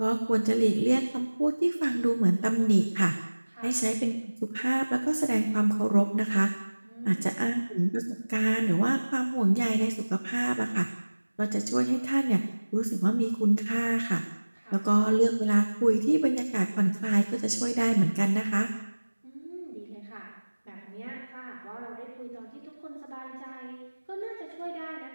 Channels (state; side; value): inverted; both; correlation -1.00